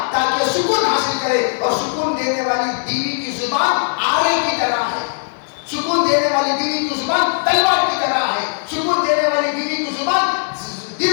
تاکہ سکون حاصل کرے. اور سکون دینے والی بیوی کی زبان آرے کی طرح ہے, سکون دینے والی بیوی کی زبان تلوار کی طرح ہے, سکون دینے والی بیوی کی زبان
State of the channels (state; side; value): silent; right; digital silence